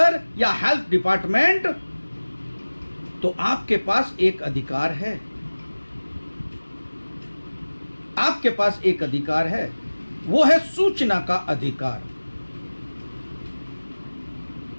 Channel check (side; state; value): both; inverted; correlation -1.00